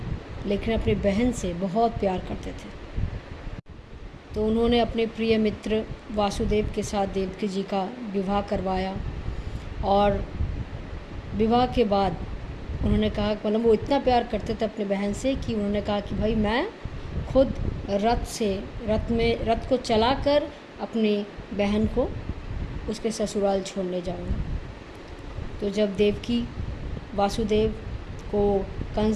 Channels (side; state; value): both; identical; correlation 1.00